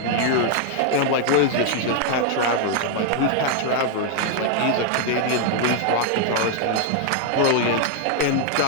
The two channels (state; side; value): different; both; correlation 0.00